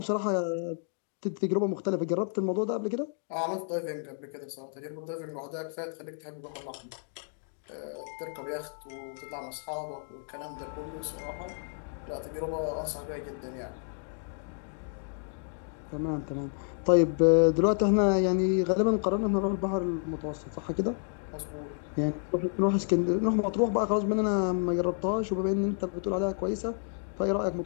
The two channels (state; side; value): silent; right; 57 dB below the other